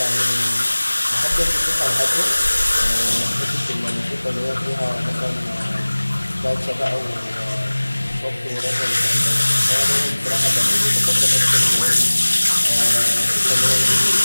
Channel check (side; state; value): both; inverted; correlation -1.00